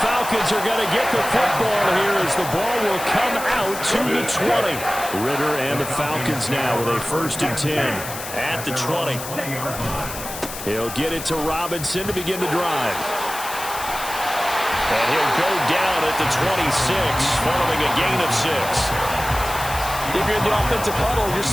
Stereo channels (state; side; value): noise; left; hiss, 10 dB below the sound